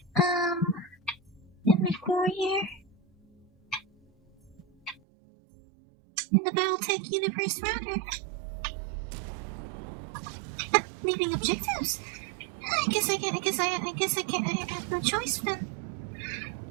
before here. In the BattleTech universe, rather. Leaving objectives. I guess I have no choice then.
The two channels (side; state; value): left; drops out; at 5.0 s